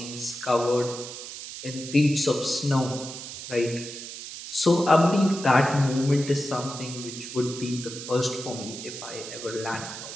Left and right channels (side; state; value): right; noise; hiss, 10 dB below the sound